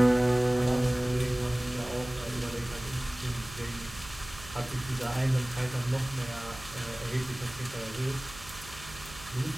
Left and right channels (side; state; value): right; noise; hum, 16 dB below the sound